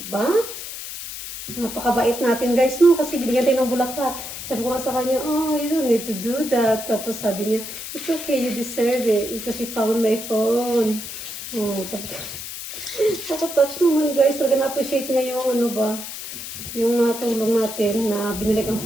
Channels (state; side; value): noise; left; hiss, 9 dB below the sound